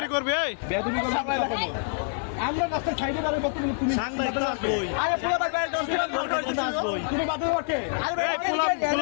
করবে এই বেয়াদবি করবে আমরা রাস্তায় সাইডে দাঁড়িয়ে বলতে তুমি সাংবাদিক আসবই আরে পোলা ভাই ভাই তুমি বাদে ওকে এই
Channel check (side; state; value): right; silent; digital silence